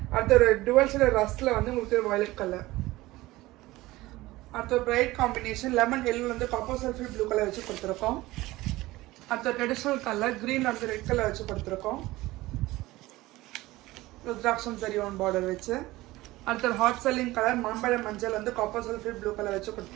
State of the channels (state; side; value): quieter; left; 18.6 dB